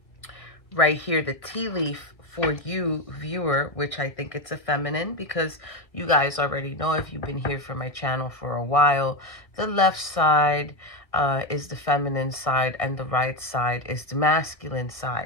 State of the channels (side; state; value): right; late; 1.9 ms